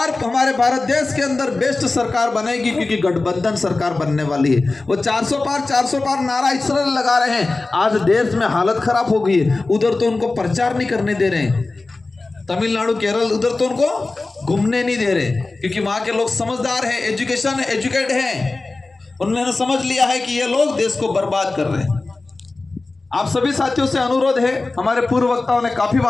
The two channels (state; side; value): quieter; right; 3.4 dB